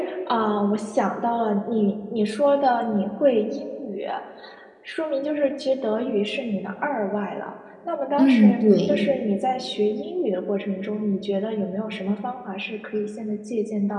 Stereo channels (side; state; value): both; identical; correlation 1.00